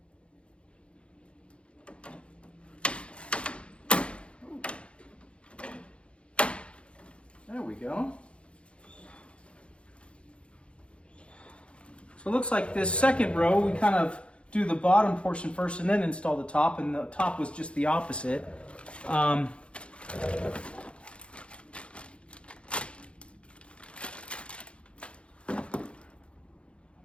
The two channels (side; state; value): right; late; 0.059 ms